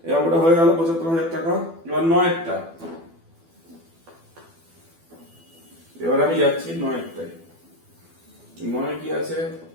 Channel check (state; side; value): late; left; 12 ms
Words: এবার হয়ে গেল 75,000 টাকা। এবার 9টা, এবার আমি যাচ্ছি 9টায়। 9 কি আছে?